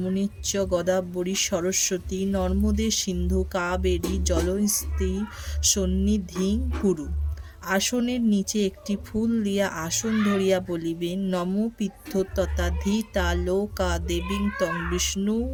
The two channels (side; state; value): both; identical; correlation 1.00